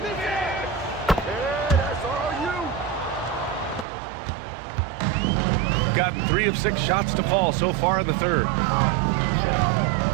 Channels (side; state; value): left; drops out; at 3.9 s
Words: Gotten 3 of 6 shots to fall so far in the third.